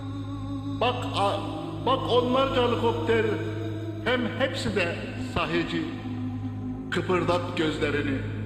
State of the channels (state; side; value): identical; both; correlation 1.00